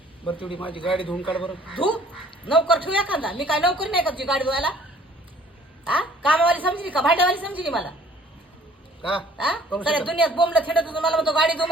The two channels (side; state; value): both; normal; correlation 0.55